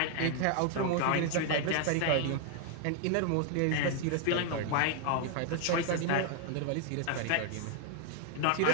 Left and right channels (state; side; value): different; both; correlation 0.00